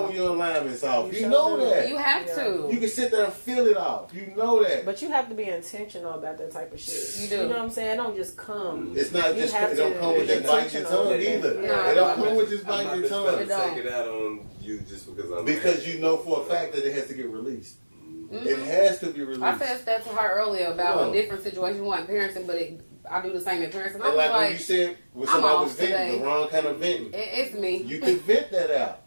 when your alignment's off. You sure know do. that. You have to. You can sit there and feel it off. You know that. But you have to be intentional about that type of shit. You do. You know what I'm saying? It don't just come. It's not You just have it don't to come with be just biting your intentional tongue with it. either. No, It don't no, come with just I'm biting not your just tongue. about to don't. take it out on you just because I'm Because mad. you know for a fact that it has to get released. It has to be released. I said that to her earlier about Yeah. a different situation, one parenting, but I do the same in parenting. I And was like when like, you said when I'm somebody was off venting, today. the wrong kind of venting. it's me. You can vent that out,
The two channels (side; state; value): both; inverted; correlation -1.00